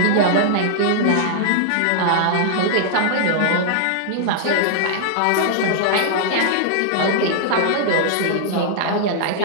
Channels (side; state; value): both; different; correlation -0.01